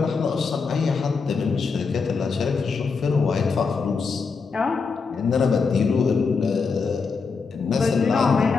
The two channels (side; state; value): right; quieter; 5.0 dB